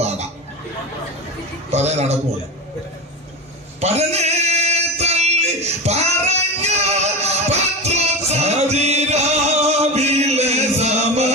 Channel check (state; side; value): normal; both; correlation 0.23